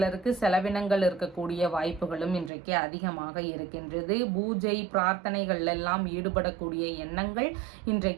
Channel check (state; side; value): drops out; left; at 2.5 s